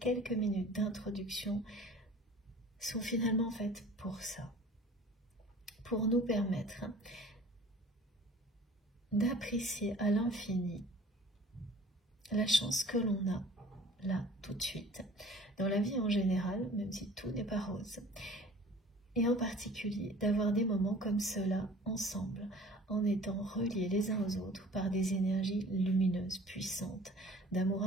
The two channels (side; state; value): both; normal; correlation 0.47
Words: minutes d'introduction sont finalement faites pour ça, pour nous permettre d'apprécier à l'infini la chance que l'on a là tout de suite, dans la vie en général, même si tout n'est pas rose, et en particulier d'avoir des moments comme cela ensemble, en étant reliés les uns aux autres par des énergies lumineuses, puissantes, d'amour